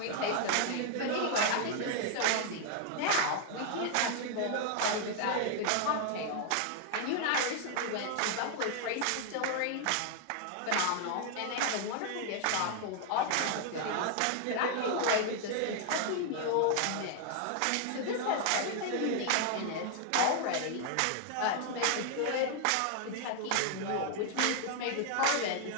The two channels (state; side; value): different; both; correlation 0.00